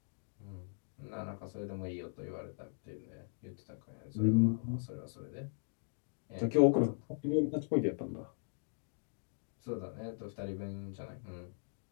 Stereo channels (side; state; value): right; silent; digital silence